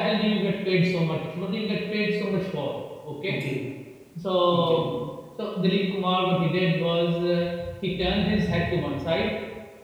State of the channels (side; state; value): both; identical; correlation 1.00